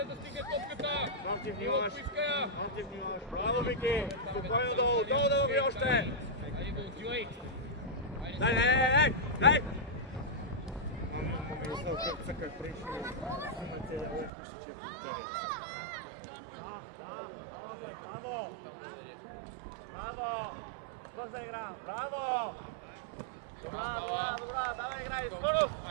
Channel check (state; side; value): drops out; left; at 14.3 s